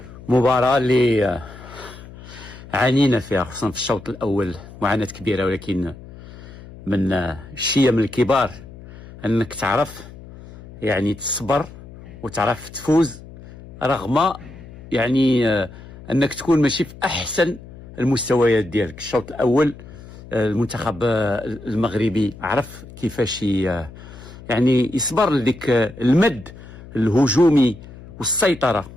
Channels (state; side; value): noise; left; hum, 17 dB below the sound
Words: مباراة اللي عانينا فيها خصوصا في الشوط الأول معاناة كبيرة، ولكن من الشيء من الكبار أنك تعرف يعني تصبر وتعرف تفوز رغم يعني أنك تكون ماشي في أحسن المستويات ديالك. الشوط الأول المنتخب المغربي عرف كيفاش يعني يصبر لديك المد الهجومي والسيطرة